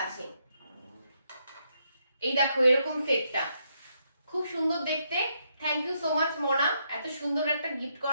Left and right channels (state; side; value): inverted; both; correlation -0.77